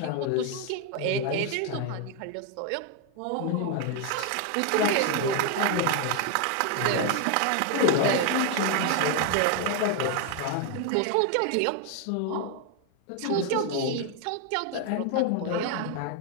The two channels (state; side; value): different; both; correlation 0.01